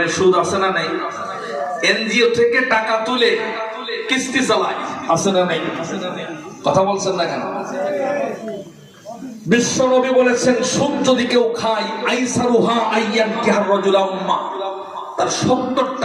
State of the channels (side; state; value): both; identical; correlation 1.00